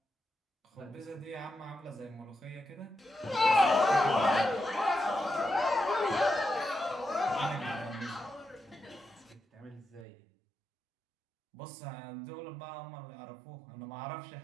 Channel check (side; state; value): left; drops out; at 10.1 s